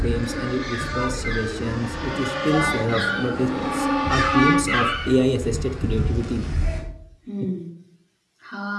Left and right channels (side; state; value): both; identical; correlation 1.00